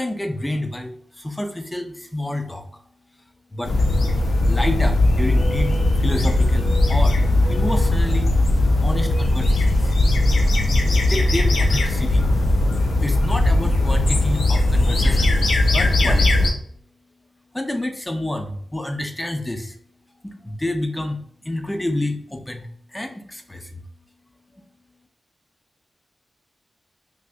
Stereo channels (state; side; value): normal; both; correlation 0.92